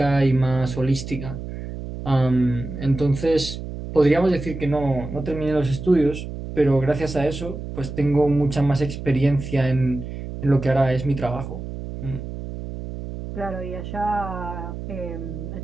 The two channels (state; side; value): noise; right; hum, 8 dB below the sound